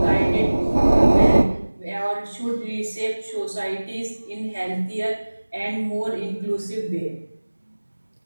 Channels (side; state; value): both; inverted; correlation -1.00